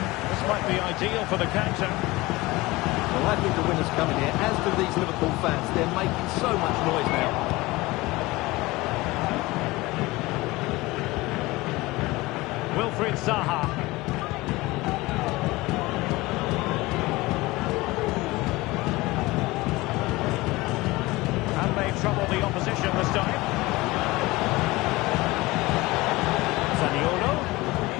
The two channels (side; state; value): right; quieter; 20.9 dB